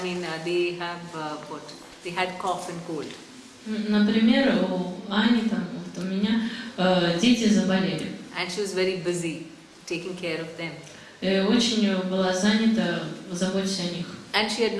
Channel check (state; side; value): identical; both; correlation 1.00